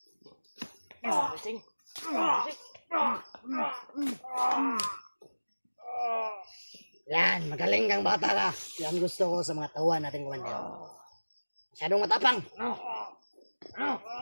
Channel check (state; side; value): inverted; both; correlation -1.00